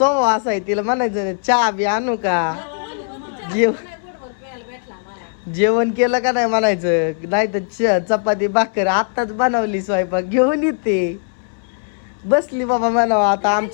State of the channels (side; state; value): right; silent; 67 dB below the other